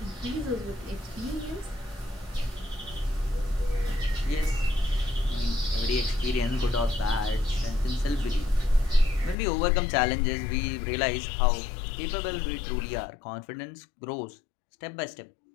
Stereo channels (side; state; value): right; drops out; at 9.3 s